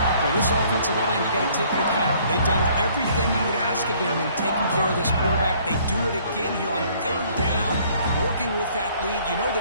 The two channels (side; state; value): both; inverted; correlation -0.60